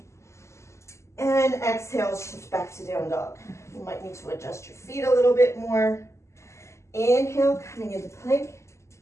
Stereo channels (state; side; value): late; right; 0.13 ms